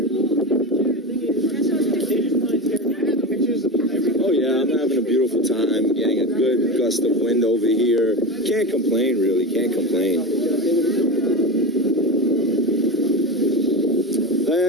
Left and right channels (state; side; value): normal; both; correlation 0.23